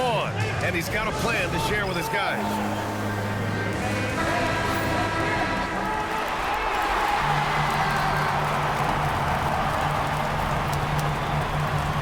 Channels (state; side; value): identical; both; correlation 1.00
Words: and he's got a plan to share with his guys.